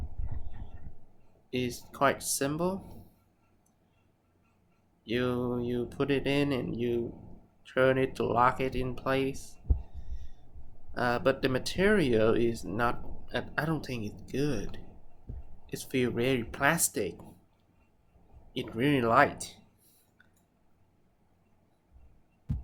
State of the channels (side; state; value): both; identical; correlation 1.00